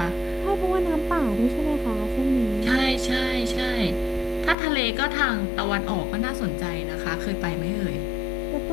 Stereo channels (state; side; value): drops out; right; at 4.5 s